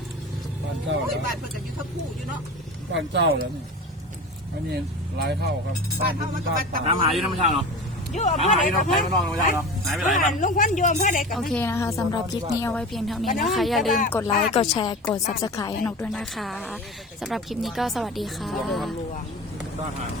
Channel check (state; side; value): normal; both; correlation 0.32